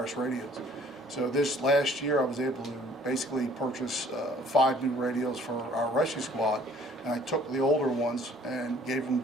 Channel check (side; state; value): both; normal; correlation 0.56